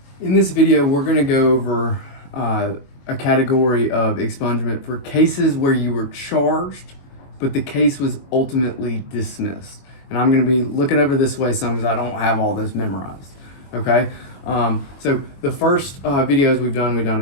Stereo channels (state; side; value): late; right; 22 ms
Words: In this video, we're going to go over a category of expungement for cases where you were charged, but the case was ultimately dismissed. And I'm going to be looking over this way some because I don't have all this memorized. Okay, so the first videos we've done